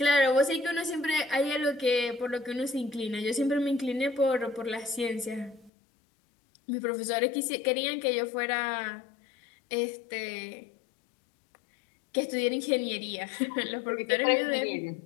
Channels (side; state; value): right; drops out; at 5.7 s